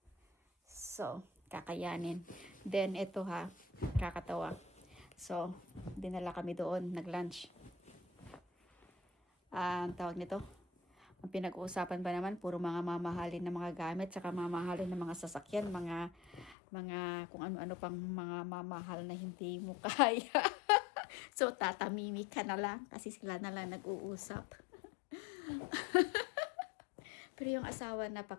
So, kakayanin. Then, ito kakatawa. So, dinala kami doon, nag-lunch. Ang tawag nito, ang pinag-uusapan ba naman, puro mga mamahalin na mga gamit, saka mamahalin na mga sasakyan, mga kung ano-ano pang mga mamahal na hindi mo kaya. So, tatamimi ka na lang, kasi sila na lang nag-uusap. Pero yung asawa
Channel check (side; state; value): right; drops out; at 16.6 s